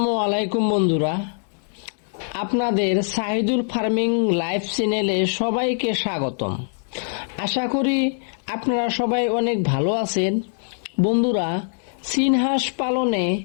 আলাইকুম বন্ধুরা, আপনাদের সাহিদুল ফার্মিং লাইভ চ্যানেলে সবাইকে স্বাগতম। আশা করি আপনারা সবাই অনেক ভালো আছেন। বন্ধুরা, চীন হাঁস পালনে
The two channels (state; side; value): silent; right; 58 dB below the other